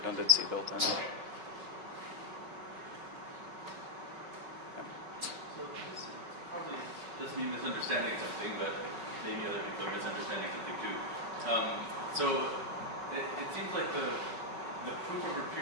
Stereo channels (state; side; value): late; left; 5.3 ms